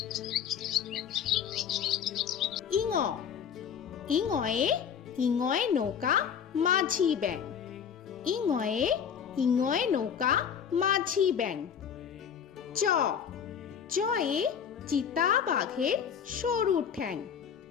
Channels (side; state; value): right; quieter; 7.8 dB